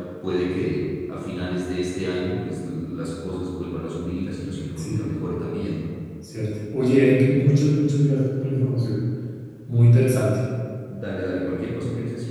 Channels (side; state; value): both; identical; correlation 1.00